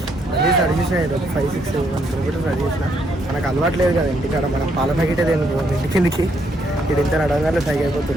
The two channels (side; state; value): both; normal; correlation 0.73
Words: అది స్టార్ట్ చేసిన 5-6 కిలోమీటర్స్ స్టార్ట్ చేసిన. మనకు అలవాటు లేదు కదా ఇంటికాడ, మనం పాల ప్యాకెట్ ఏం ఇంటి కిందికి ఇది ఇంత నడవగానే సైకి